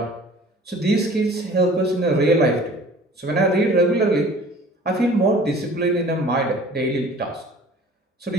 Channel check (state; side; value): normal; both; correlation 0.47